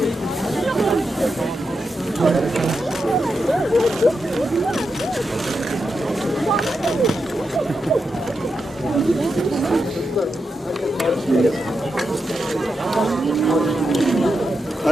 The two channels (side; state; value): both; normal; correlation 0.86